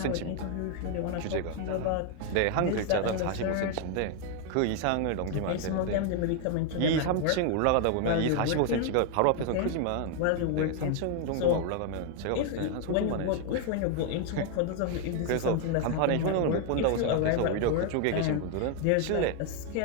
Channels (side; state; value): both; different; correlation 0.00